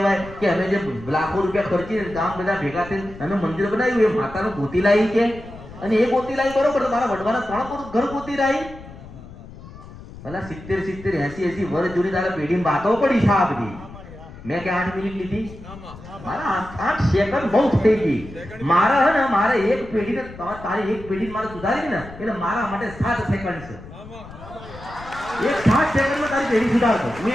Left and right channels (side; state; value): left; noise; rumble, 16 dB below the sound